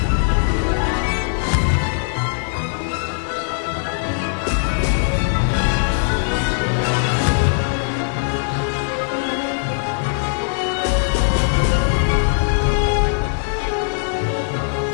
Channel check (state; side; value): silent; right; 66 dB below the other